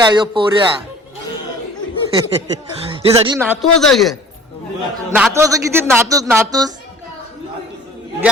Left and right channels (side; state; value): both; normal; correlation 0.47